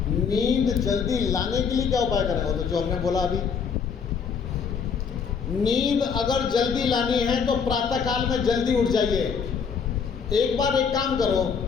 नींद जल्दी लाने के लिए क्या उपाय करें? वो तो जो हमने बोला अभी। नींद अगर जल्दी लानी है तो प्रातः काल में जल्दी उठ जाइए। एक बार एक काम करो,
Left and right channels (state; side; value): quieter; right; 6.3 dB